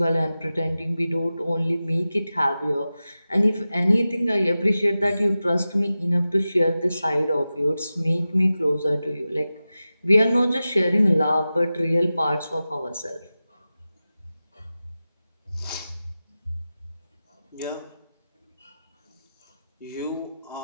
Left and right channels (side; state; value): both; inverted; correlation -0.94